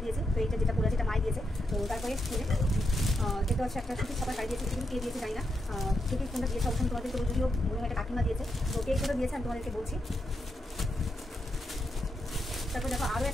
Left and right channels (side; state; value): both; normal; correlation 0.83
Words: দিয়েছে, তো এইটা যেটা পরে আছে এটা মাই দিয়েছে। তো তারপরে দেখতে হচ্ছে একটা সুতির ছাপা শাড়ি দিয়েছে, কিন্তু কে দিয়েছে জানি না, কে কোনটা দিয়েছে অবশ্যই তোমাদের, তো যদিও মনে হয় একটা কাকিমা দিয়েছে, তো কে কোনটা দিয়েছে আমি তোমাদেরকে বলছি। তারপর দেখো আরও